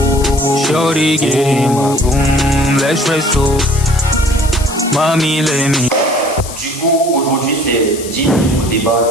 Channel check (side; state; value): left; noise; hiss, 12 dB below the sound